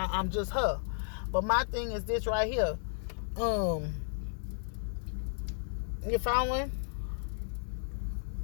just her. But my thing is this right here. You following?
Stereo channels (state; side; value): silent; right; digital silence